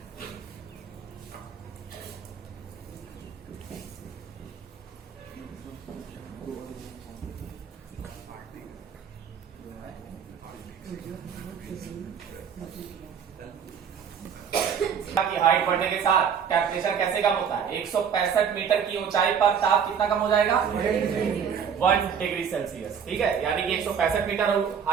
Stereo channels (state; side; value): quieter; left; 7.4 dB